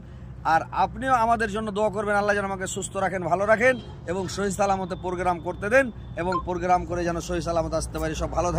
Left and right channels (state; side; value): identical; both; correlation 1.00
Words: আর আপনিও আমাদের জন্য দোয়া করবেন, আল্লাহ যেন আমাকে সুস্থ রাখেন, ভালো রাখেন এবং সহি সালামতে প্রোগ্রাম করতে দেন, এবং প্রোগ্রাম করে যেন সহি সালামতে আসতে পারি। সব ভালো